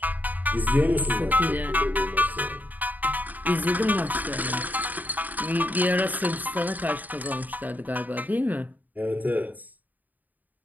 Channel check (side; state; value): left; late; 0.083 ms